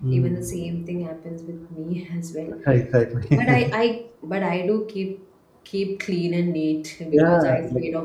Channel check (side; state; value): both; identical; correlation 1.00